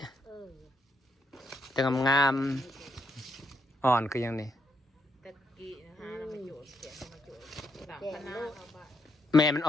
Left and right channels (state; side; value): normal; both; correlation 0.77